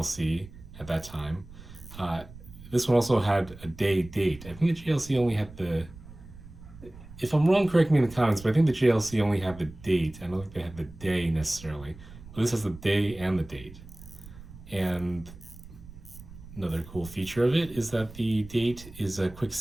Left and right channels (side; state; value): right; noise; rumble, 17 dB below the sound